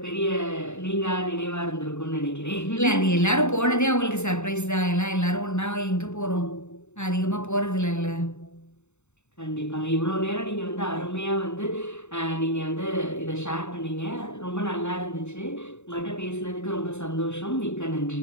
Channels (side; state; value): right; late; 0.82 ms